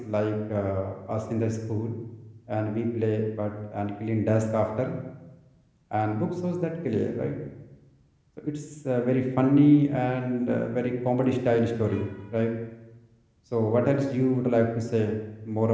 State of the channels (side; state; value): both; identical; correlation 1.00